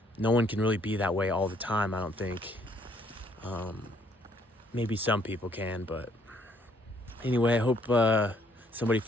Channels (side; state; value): both; normal; correlation 0.66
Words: no one can really be that way all the time, I don't think. Maybe some people can, but anyway, I hope somebody